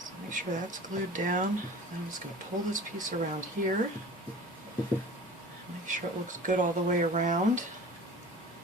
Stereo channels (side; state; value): both; normal; correlation 0.40